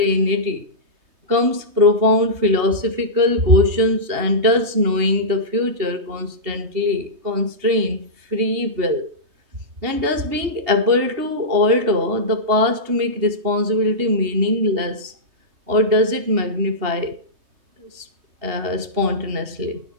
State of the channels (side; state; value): left; late; 3.2 ms